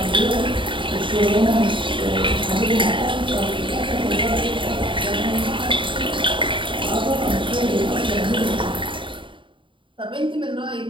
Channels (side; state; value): left; late; 0.24 ms